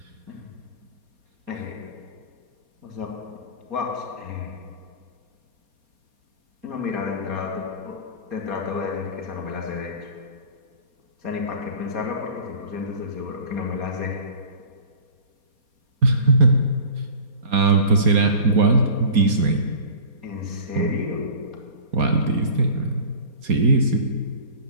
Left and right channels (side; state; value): left; late; 4.3 ms